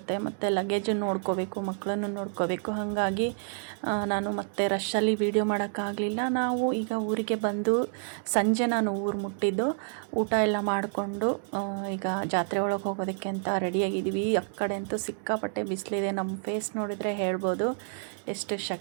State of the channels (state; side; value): silent; left; digital silence